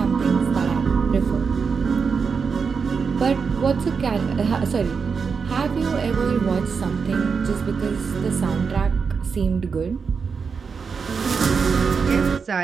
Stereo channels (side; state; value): left; quieter; 5.6 dB